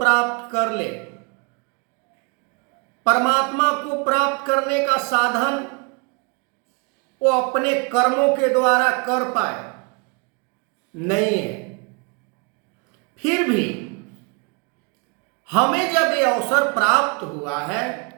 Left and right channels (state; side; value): quieter; left; 32.9 dB